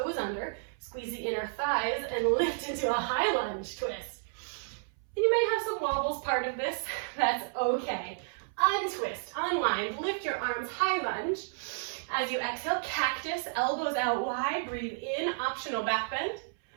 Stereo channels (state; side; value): silent; left; 57 dB below the other